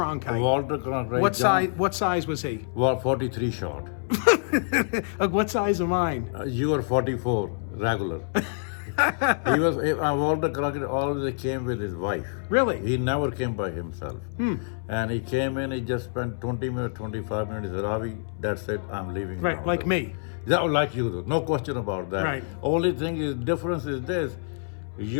Walter Cronkite. What size was he? Well, 43 short. What size am I? You were 44 regular. He was Walter Cronkite always came with his wife. Really? He never came by himself. And he came in, he just spent 20 minutes, 25 minutes. He said, Ravi, that's it, I'm leaving Right, now. like me. Yeah, like you do. No question about that. Right. Only thing is, difference is this.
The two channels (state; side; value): silent; right; 61 dB below the other